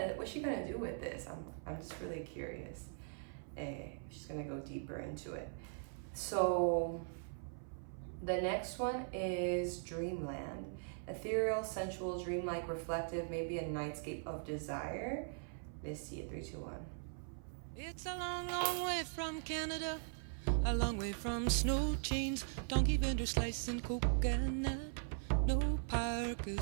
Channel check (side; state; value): left; silent; 51 dB below the other